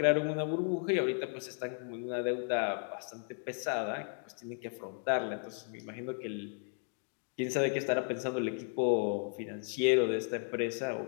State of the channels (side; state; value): right; silent; 55 dB below the other